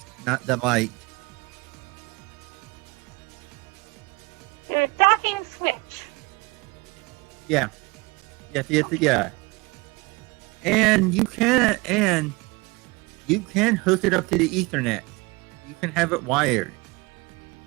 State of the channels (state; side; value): quieter; left; 24.6 dB